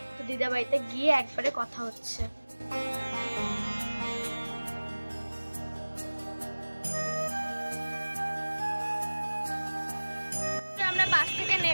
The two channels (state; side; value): inverted; both; correlation -1.00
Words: তো দিদাবাড়িতে গিয়ে একবারে কথা হচ্ছে। আমরা বাস থেকে